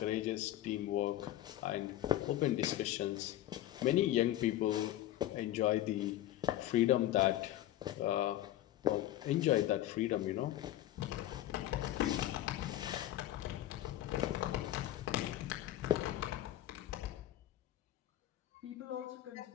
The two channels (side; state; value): right; quieter; 13.7 dB